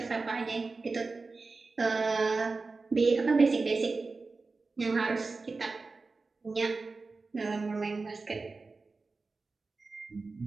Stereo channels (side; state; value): left; quieter; 3.9 dB